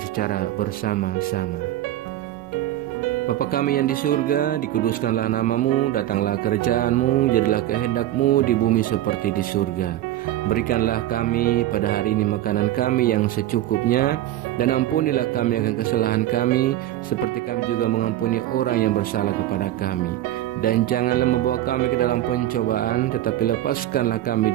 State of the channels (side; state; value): left; quieter; 13.7 dB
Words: bersama-sama. Bapa kami yang di surga, dikuduskanlah nama-Mu, datanglah kerajaan-Mu, jadilah kehendak-Mu di bumi seperti di surga. Berikanlah kami pada hari ini makanan kami yang secukupnya, dan ampunilah kami akan kesalahan kami, seperti kami juga mengampuni orang yang bersalah kepada kami. Dan janganlah membawa kami ke dalam pencobaan, tetapi lepaskanlah kami